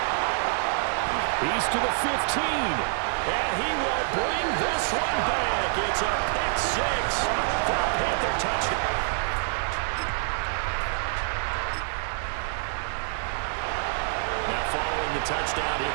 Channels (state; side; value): silent; left; digital silence